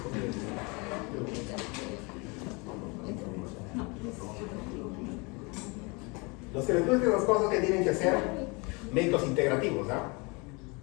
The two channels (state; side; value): quieter; right; 28.9 dB